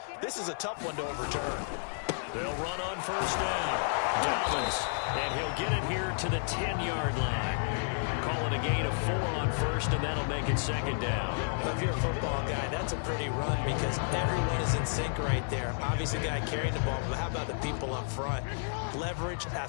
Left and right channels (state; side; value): silent; right; digital silence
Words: This is a tough one to overturn. They'll run on 1st down. Dobbins, and he'll get it here to the 10-yard line. Call it a gain of 4 on 1st, and that'll make it 2nd down. Well, if you're a football guy, that's a pretty run because everyone is in sync right there. Obviously, the guy carrying the ball, but how about the people up front? Leverage,